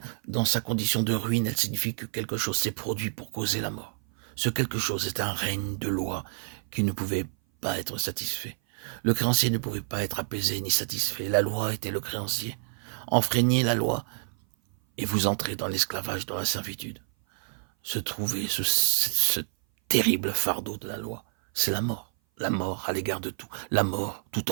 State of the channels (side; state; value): left; silent; 57 dB below the other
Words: dans sa condition de ruine, elle signifie que quelque chose s'est produit pour causer la mort. Ce quelque chose est un règne de loi qui ne pouvait pas être satisfait. Le créancier ne pouvait pas être apaisé ni satisfait. La loi était le créancier. Enfreignez la loi et vous entrez dans l'esclavage, dans la servitude. Se trouver ce terrible fardeau de la loi, c'est la mort à l'égard de tout, la mort tout